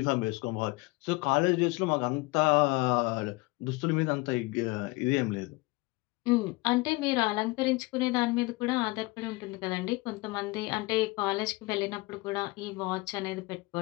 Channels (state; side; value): quieter; right; 23.3 dB